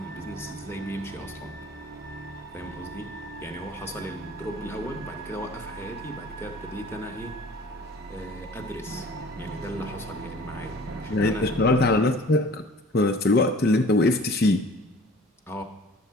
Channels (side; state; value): both; normal; correlation 0.48